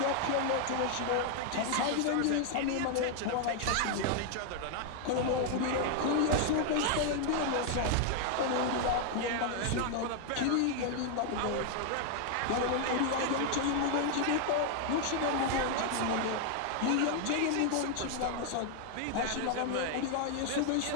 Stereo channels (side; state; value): both; different; correlation 0.00